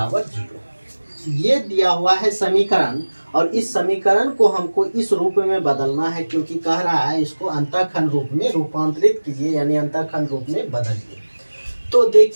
0। ये दिया हुआ है समीकरण, और इस समीकरण को हमको इस रूप में बदलना है, क्योंकि कह रहा है इसको अंतःखंड रूप में रूपांतरित कीजिए, यानी अंतःखंड रूप में बदलिए। तो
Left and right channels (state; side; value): inverted; both; correlation -1.00